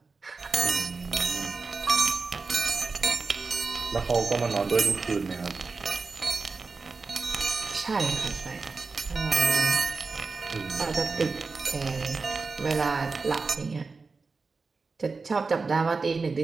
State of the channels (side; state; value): left; quieter; 4.3 dB